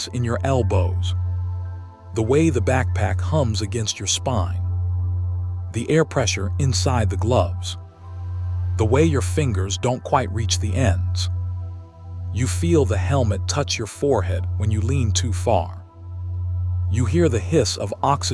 in your elbows, the way the backpack hums against your spine, the air pressure inside the gloves, the way your fingers don't quite reach the ends. You feel the helmet touch your forehead when you lean too far. You hear the hiss of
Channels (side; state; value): both; identical; correlation 1.00